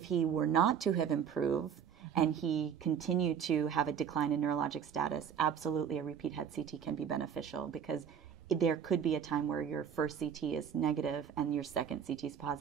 he were not to have improved and he continued to have a decline in neurologic status, absolutely a repeat head CT can be beneficial, because there could be a time where your first CT is negative and your second CT is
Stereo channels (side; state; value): left; quieter; 8.1 dB